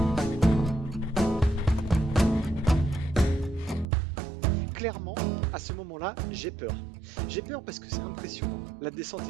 Clairement, à ce moment-là, j'ai peur. J'ai peur parce que c'est impressionnant. La descente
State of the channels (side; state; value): left; drops out; at 3.9 s